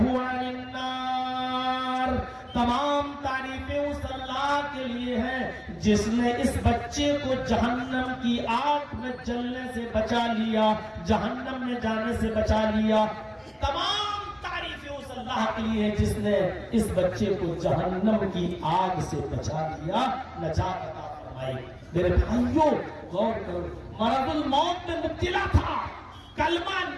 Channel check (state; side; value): identical; both; correlation 1.00